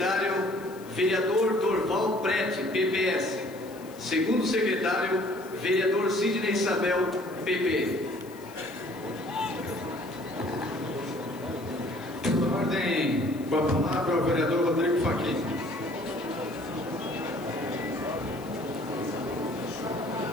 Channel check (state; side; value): noise; left; hiss, 23 dB below the sound